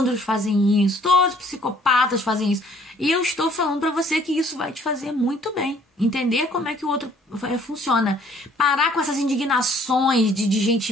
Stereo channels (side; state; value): both; normal; correlation 0.59